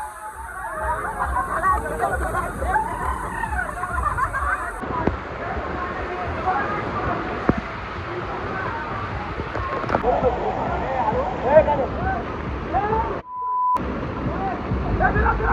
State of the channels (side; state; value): both; identical; correlation 1.00